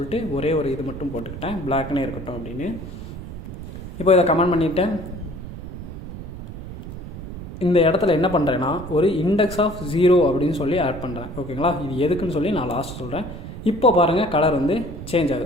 ஒரே ஒரு இது மட்டும் போட்டுக்கிட்டேன், பிளாக்னே இருக்கட்டும் அப்படின்னு. இப்போ இதை கமெண்ட் பண்ணிவிட்டேன். இந்த இடத்துல என்ன பண்ணுறேன்னா ஒரு இண்டெக்ஸ் ஆஃப் 0 அப்படின்னு சொல்லி ஆட் பண்ணுறேன். ஓகேங்களா? இது எதுக்குன்னு சொல்லி நான் லாஸ்ட் சொல்கிறேன். இப்போ பாருங்கள் கலர் வந்து சேஞ்ச்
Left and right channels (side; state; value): right; noise; rumble, 10 dB below the sound